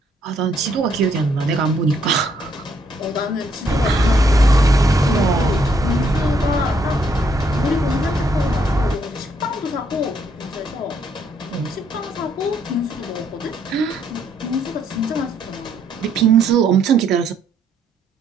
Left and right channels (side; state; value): both; normal; correlation 0.71